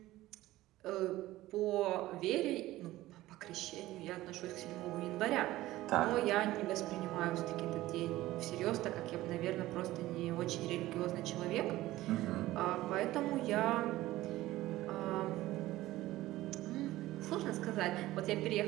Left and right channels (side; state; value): left; quieter; 16.6 dB